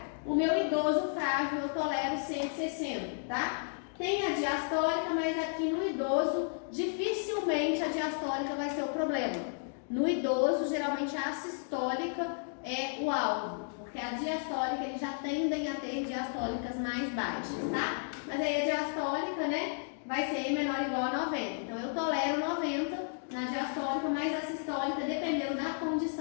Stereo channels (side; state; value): right; silent; digital silence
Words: O meu idoso frágil eu tolero 160, tá? Tem a diastólica, mas aqui no idoso, dificilmente a diastólica vai ser o problema. No idoso, geralmente a sistólica é o alvo, porque a diastólica, eles já tendem a ter diastólicas mais baixas, tá? Mas aí a diastólica, né, vai ser menor ou igual a 90. Então, eu tolero 90 na diastólica, mas a sistólica, dependendo da